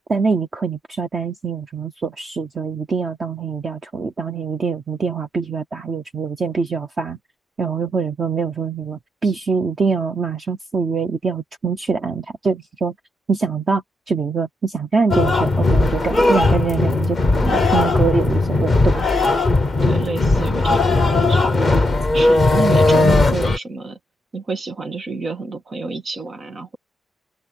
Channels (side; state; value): both; normal; correlation 0.81